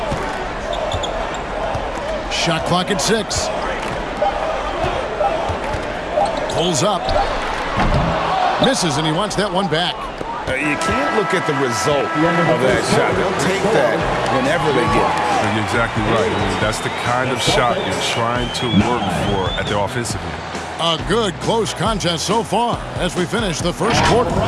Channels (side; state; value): both; identical; correlation 1.00